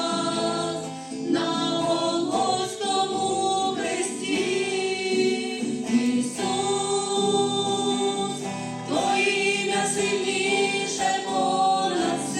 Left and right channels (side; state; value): both; identical; correlation 1.00